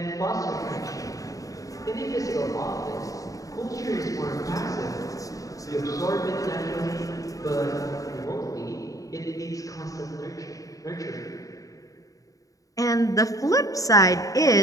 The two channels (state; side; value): late; right; 0.16 ms